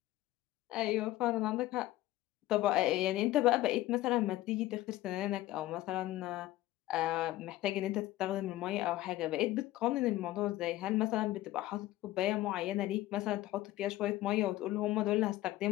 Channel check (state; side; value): quieter; right; 16.1 dB